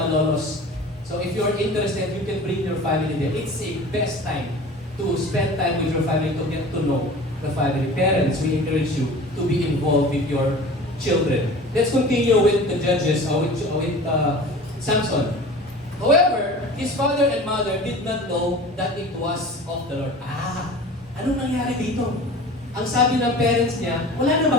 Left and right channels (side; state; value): both; normal; correlation 0.40